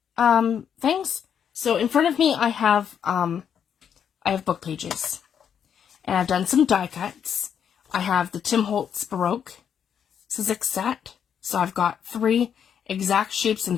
things. So in front of me I have book pages. And I've done some die cuts. I have the Holtz Baroque Sizzix set. So I've got 3 exact shapes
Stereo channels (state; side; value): quieter; right; 8.2 dB